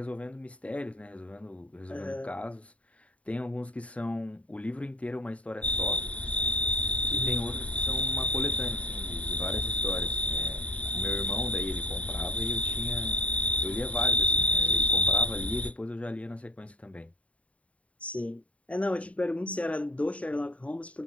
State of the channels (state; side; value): late; right; 0.065 ms